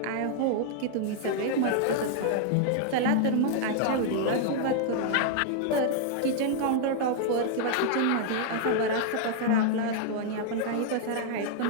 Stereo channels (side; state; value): both; different; correlation -0.01